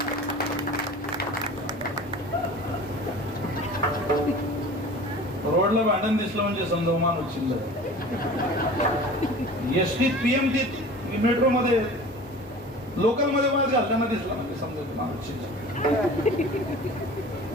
रोडला भांडण दिसलं म्हणजे समजा माणूस चिल्लर. एसटीत पीएमटीत मेट्रो मध्ये लोकल मध्ये वाद घालताना दिसला म्हणजे समजा माणूस चिल्लर.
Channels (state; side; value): normal; both; correlation 0.40